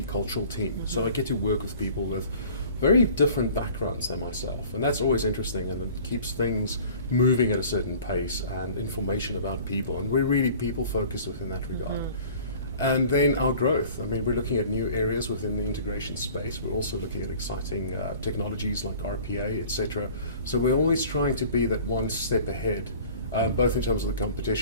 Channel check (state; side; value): inverted; both; correlation -0.47